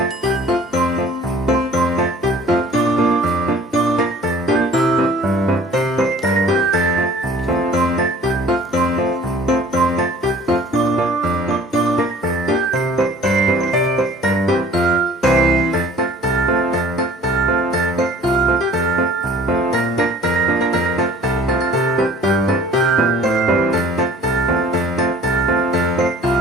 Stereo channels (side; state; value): both; normal; correlation 0.49